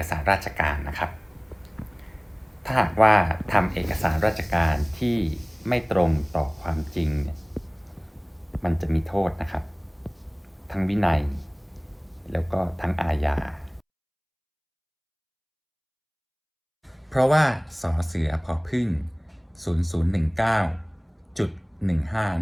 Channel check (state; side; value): identical; both; correlation 1.00